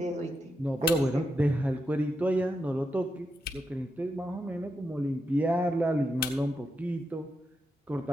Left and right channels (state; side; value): normal; both; correlation 0.86